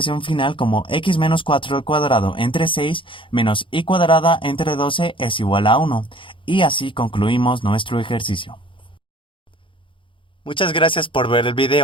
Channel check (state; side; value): late; right; 0.25 ms